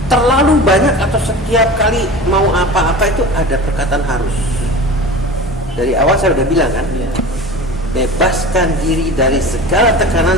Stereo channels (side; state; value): both; normal; correlation 0.35